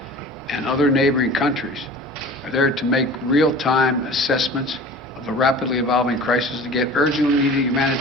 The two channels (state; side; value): normal; both; correlation 0.40